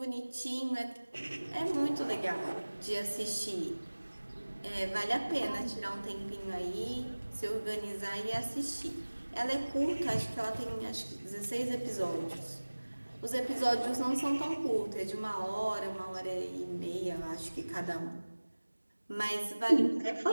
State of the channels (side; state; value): both; inverted; correlation -1.00